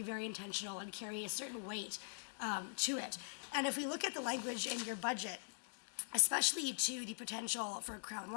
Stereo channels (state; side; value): silent; right; digital silence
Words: very intentional and carry a certain weight to it. And if we look at the language in your budget, especially to the potential for crown